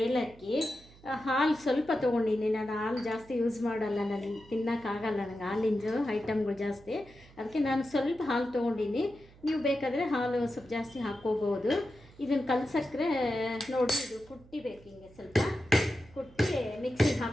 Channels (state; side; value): noise; right; hum, 24 dB below the sound